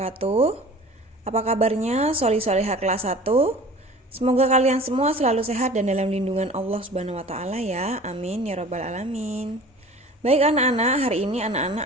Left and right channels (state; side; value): normal; both; correlation 0.43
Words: Apa kabarnya soli-solihah kelas 1? Semoga kalian semua selalu sehat dan dalam lindungan Allah Subhanahu wa taala ya. Amin ya rabbal alamin. Baik anak-anak, hari ini